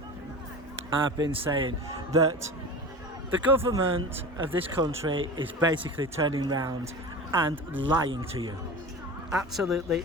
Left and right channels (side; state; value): both; normal; correlation 0.32